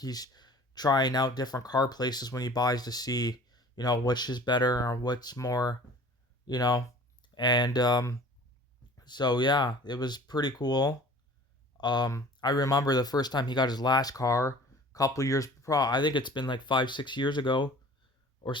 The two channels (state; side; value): normal; both; correlation 0.46